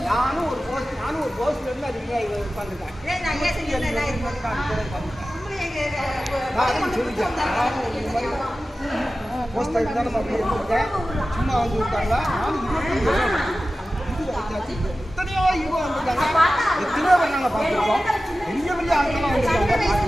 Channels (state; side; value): normal; both; correlation 0.95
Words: சும்மா வந்து விட்டாங்களா? எத்தனையோ ஈவோ வந்துட்டாங்க, எத்தனையோ பேர் நாங்கள் பார்த்துருக்கோம். பெரிய பெரிய ஆட்கள்லாம் வந்துருக்காங்க.